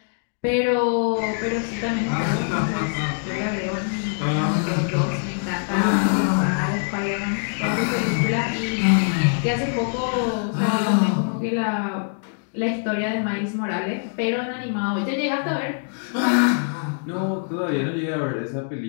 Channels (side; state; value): right; silent; digital silence